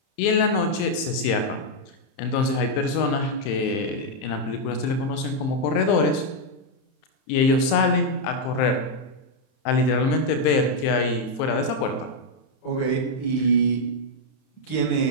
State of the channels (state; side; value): late; right; 31 ms